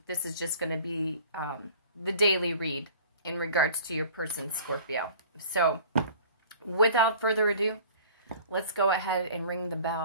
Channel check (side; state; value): both; inverted; correlation -0.46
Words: This is just going to be the daily read in regards to your person, Scorpio. So without further ado, let's go ahead and ring the